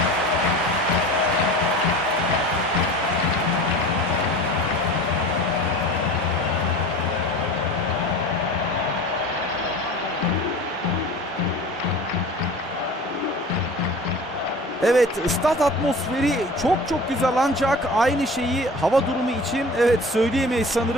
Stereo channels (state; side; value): normal; both; correlation 0.38